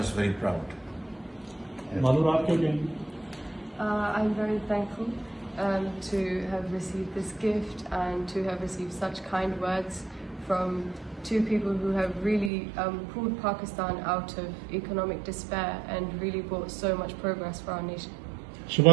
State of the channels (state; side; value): drops out; left; at 12.5 s